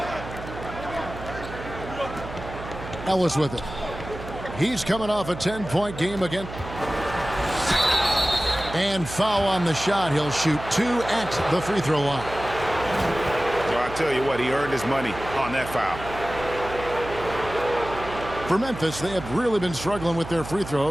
Ellis with it. He's coming off a 10-point game again. And foul on the shot. He'll shoot 2 at the free throw line. So I tell you what, he earned his money on that foul. For Memphis, they have really been struggling with their free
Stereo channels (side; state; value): right; noise; hum, 11 dB below the sound